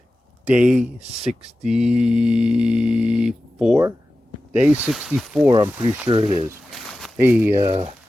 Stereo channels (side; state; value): both; normal; correlation 0.94